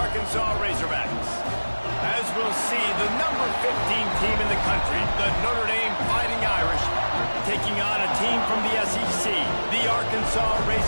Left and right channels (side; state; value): both; inverted; correlation -1.00